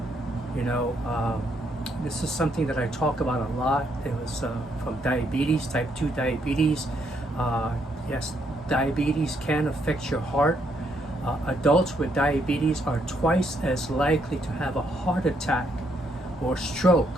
You know, this is something that I talk about a lot. It was from diabetes, type 2 diabetes. Yes, diabetes can affect your heart. Adults with diabetes are twice as likely to have a heart attack or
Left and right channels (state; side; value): normal; both; correlation 0.74